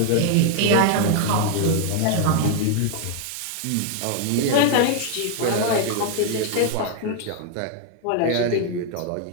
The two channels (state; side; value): different; both; correlation 0.00